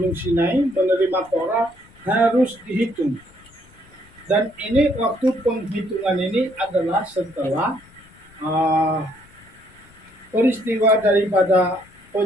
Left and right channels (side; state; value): left; noise; rumble, 27 dB below the sound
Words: Sinai menerima Torah harus dihitung. Dan ini waktu penghitungan ini adalah setelah peristiwa daripada